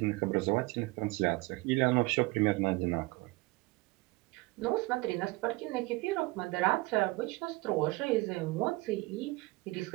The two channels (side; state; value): left; quieter; 23.1 dB